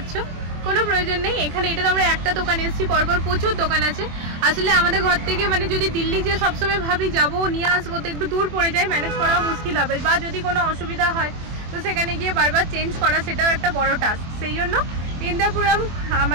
কোনো প্রয়োজন নেই এখানে। এটা তো আমরা একটা দোকানে এসেছি, পরপর প্রচুর দোকান আছে। আসলে আমাদের ঘর থেকে মানে যদি দিল্লি যে সবসময় ভাবি যাবো নিয়ে আসবো, তো একটু দূর পড়ে যায়, ম্যানেজ করাও মুশকিল হবে। বা যদি কোনো অসুবিধা হয় তো সেখানে গিয়ে বারবার চেঞ্জ করা, সেটাও একটা বড় টাস্ক। সেই জন্য ইন্দ্রপুরম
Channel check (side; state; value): left; late; 24 ms